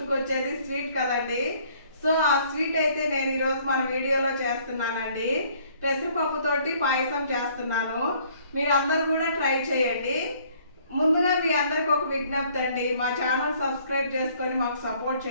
స్వీట్ కదండి. సో ఆ స్వీట్ అయితే నేను ఈరోజు మన వీడియోలో చేస్తున్నానండి. పెసరపప్పుతోటి పాయసం చేస్తున్నాను. మీరు అందరూ కూడా ట్రై చేయండి. ముందుగా మీ అందరికి ఒక విజ్ఞప్తి అండి, మా ఛానల్ సబ్స్క్రైబ్ చేసుకొని మాకు సపోర్ట్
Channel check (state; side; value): inverted; both; correlation -0.60